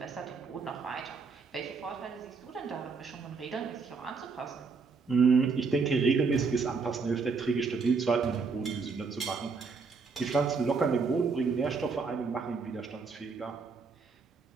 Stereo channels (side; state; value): left; quieter; 4.8 dB